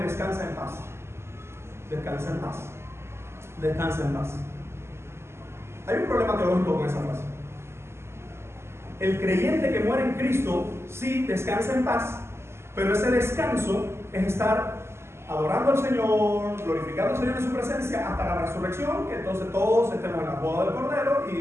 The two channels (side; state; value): left; late; 0.12 ms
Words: en paz, descansa en paz, descansa en paz. Hay un problema teológico con esa frase. El creyente que muere en Cristo sí descansa en paz, pero ese descanso es estar adorando al Señor, glorificando al Señor en su presencia hasta la resurrección, que entonces todos estemos en la boda del Cordero